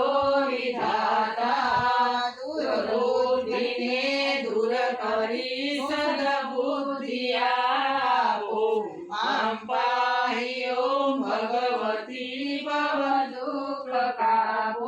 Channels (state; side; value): identical; both; correlation 1.00